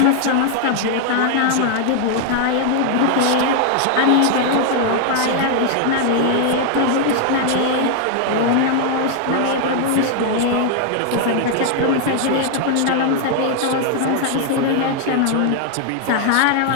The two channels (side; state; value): both; different; correlation 0.00